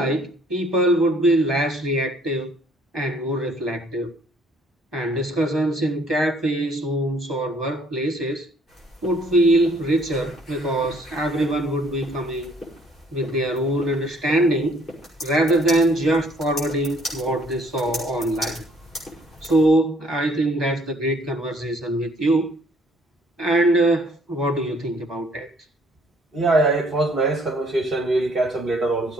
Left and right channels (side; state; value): both; normal; correlation 0.61